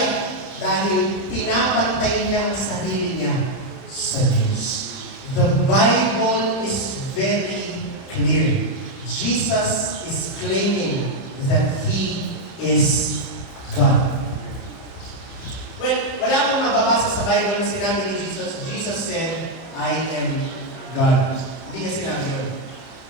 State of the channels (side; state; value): right; late; 31 ms